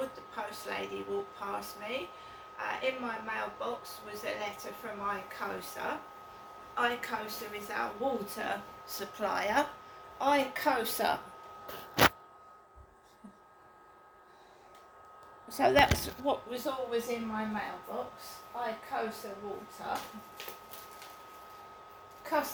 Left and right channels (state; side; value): identical; both; correlation 1.00